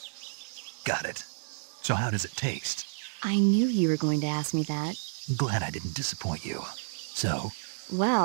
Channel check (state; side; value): silent; left; digital silence